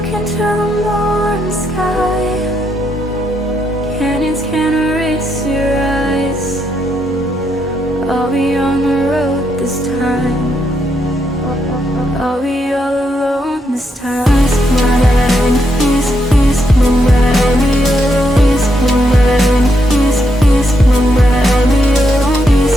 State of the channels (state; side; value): normal; both; correlation 0.79